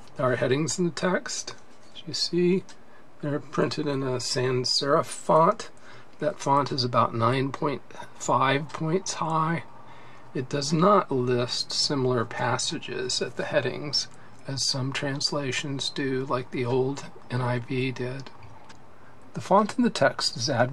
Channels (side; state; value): both; identical; correlation 1.00